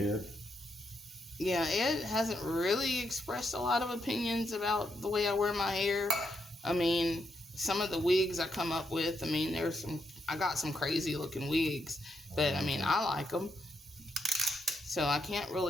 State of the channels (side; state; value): both; normal; correlation 0.79